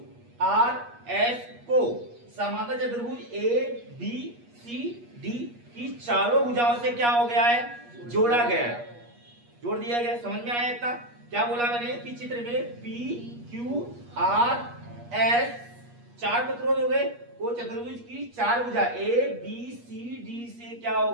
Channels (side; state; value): left; late; 8.4 ms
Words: आर एस को समांतर चतुर्भुज ए बी सी डी की चारों भुजाओं से क्या हो गया है, जोड़ा गया है, जोड़ दिया गया। समझ में आया इतना? क्या बोला मैंने कि चित्र में पी क्यू आर एस चार प्रतिरोध हो गए, वो चतुर्भुज की चार भुजा ए बी सी डी से क्या हो